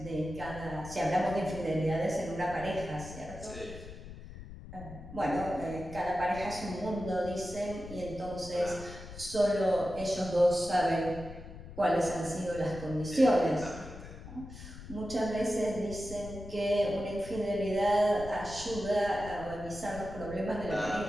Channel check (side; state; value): left; noise; rumble, 13 dB below the sound